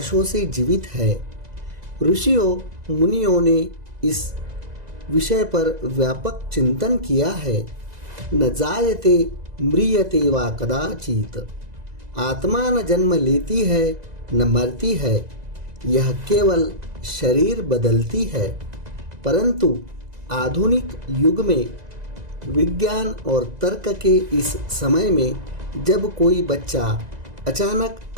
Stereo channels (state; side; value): late; left; 2.0 ms